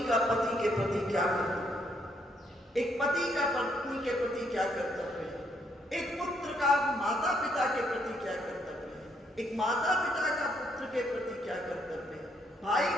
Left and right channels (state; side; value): normal; both; correlation 0.72